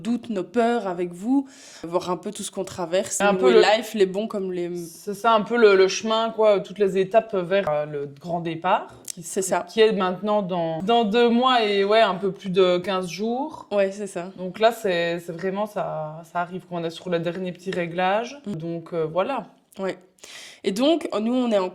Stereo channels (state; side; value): identical; both; correlation 1.00